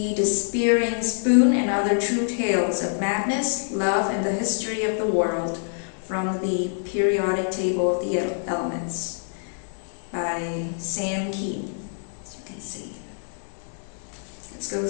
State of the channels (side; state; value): right; silent; digital silence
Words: Despairing Spoon and Other True Tales of Madness, Love, and the History of the World from the Periodic Table of the Elements by Sam Keene, as you can see. Let's go